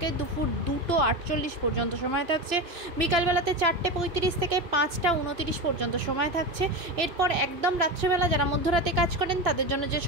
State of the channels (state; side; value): late; left; 2.9 ms